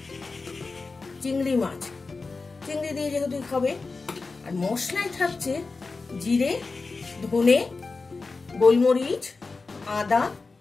চিংড়ি মাছ, চিংড়ি দিয়ে যেহেতু হবে। আর মশলায় থাকছে জিরে, ধনে, গোলমরিচ, আদা,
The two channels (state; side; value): quieter; right; 4.0 dB